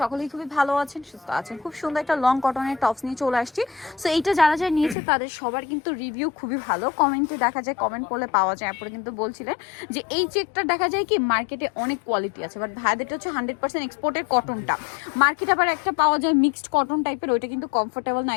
সকলেই খুবই ভালো আছেন, সুস্থ আছেন। খুব সুন্দর একটা লং কটনের টপস নিয়ে চলে আসছি। সো এইটা যারা যারা নিয়েছে তাদের সবার কিন্তু রিভিউ খুবই ভালো। কমেন্টে দেখা যায়, কমেন্ট করলে পাওয়া যায়। আপনারা কিন্তু বলছিলেন যে এই চেকটা দেখা যায় কি মার্কেটে অনেক কোয়ালিটি আছে, বাট ভাইদেরটা হচ্ছে 100% এক্সপোর্টের কটনটা। মার্কেটে আবার একটা পাওয়া যায় মিক্সড কটন টাইপের, ওইটা কিন্তু কমফোর্টেবল না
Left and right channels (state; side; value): drops out; right; at 5.0 s